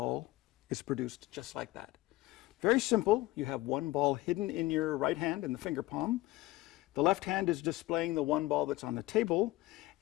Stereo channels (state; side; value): quieter; right; 18.2 dB